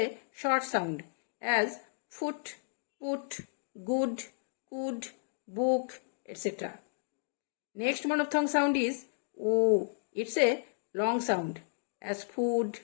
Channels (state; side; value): silent; right; digital silence